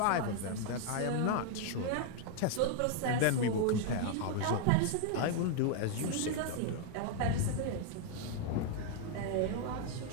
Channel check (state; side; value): different; both; correlation 0.00